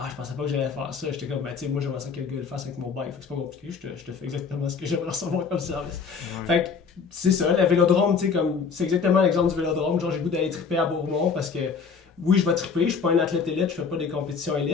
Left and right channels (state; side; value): quieter; right; 5.6 dB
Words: pensais pas que j'allais faire ça. J'étais comme, tu sais, moi j'aimerais ça que le gars le fasse avec mon bike. Fait que c'est pas compliqué, je te fais exactement ce que j'aimerais recevoir comme service. Ouais. Fait que c'est ça, le vélodrome, tu sais, comme, c'est exactement l'exemple du vélodrome. Genre, j'ai le goût d'aller triper à Bourmont parce que, oui, je vais triper, je suis pas un athlète élite, je fais pas des compétitions